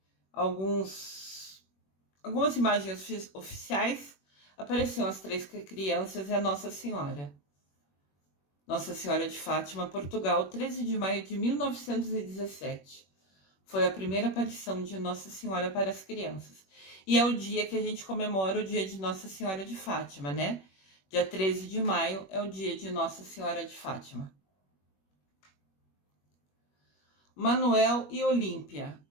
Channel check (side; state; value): right; late; 21 ms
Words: algumas imagens oficiais. Apareciam as 3 crianças e a Nossa Senhora. Nossa Senhora de Fátima, Portugal, 13 de maio de 1917. Foi a primeira aparição de Nossa Senhora para as crianças. E é o dia que a gente comemora o dia de Nossa Senhora de Fátima, né? Dia 13 de maio é o dia de Nossa Senhora de Fátima. Manuel e Olímpia